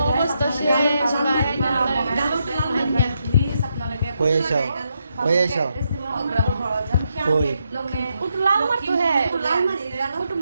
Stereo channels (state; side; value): inverted; both; correlation -0.81